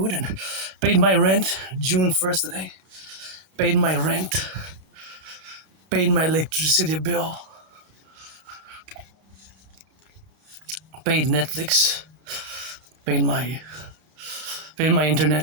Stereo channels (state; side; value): late; left; 31 ms